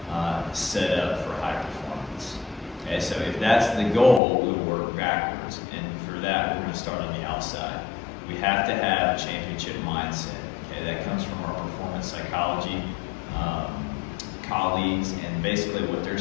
set up for high performance. Okay, so if that's the goal, we'll work backwards. And for that, we're going to start on the outside. We have to have a championship mindset. Okay, that comes from our performance psychology colleagues, and basically what they're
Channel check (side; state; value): right; drops out; at 4.2 s